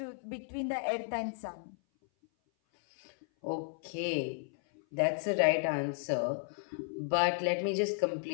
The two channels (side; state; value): right; silent; 55 dB below the other